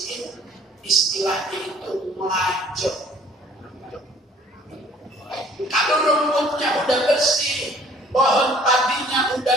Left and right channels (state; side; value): normal; both; correlation 0.55